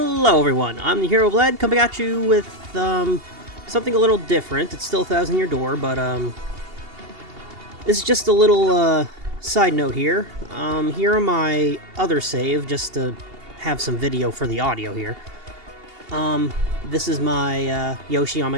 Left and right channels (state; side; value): late; left; 2.8 ms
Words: everyone, I'm the Herooflead, coming at you with something a little different. It's still 1,000 Year Door, but this is just a little side note here. Here on my other save, just to have some video for the audio here. This is my Yoshi on